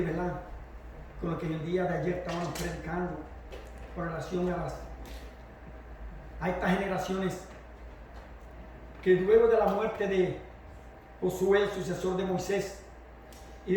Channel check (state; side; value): identical; both; correlation 1.00